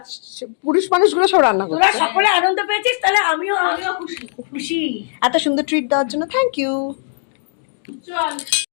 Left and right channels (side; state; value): right; silent; digital silence